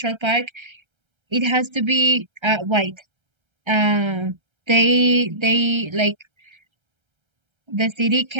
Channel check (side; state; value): left; late; 1.3 ms